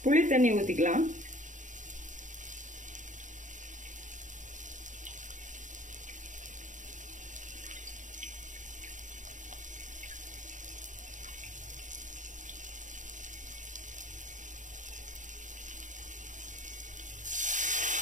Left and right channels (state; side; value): late; left; 0.36 ms